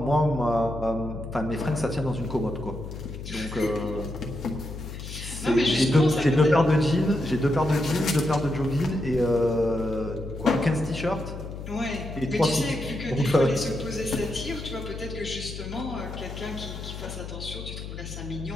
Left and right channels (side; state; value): left; noise; hum, 9 dB below the sound